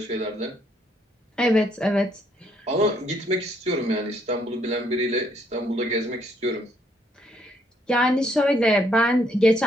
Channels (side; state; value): both; normal; correlation 0.69